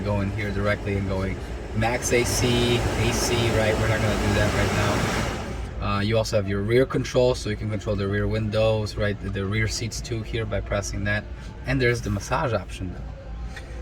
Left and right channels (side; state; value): both; identical; correlation 1.00